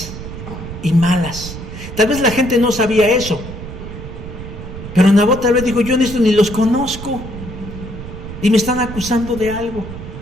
y malas. Tal vez la gente no sabía eso, pero Nabot tal vez dijo, yo en esto ni los conozco y me están acusando de algo.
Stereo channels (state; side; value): noise; right; rumble, 10 dB below the sound